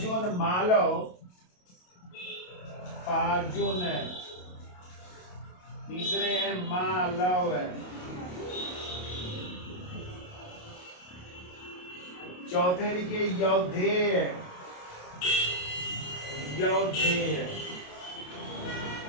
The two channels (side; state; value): right; late; 28 ms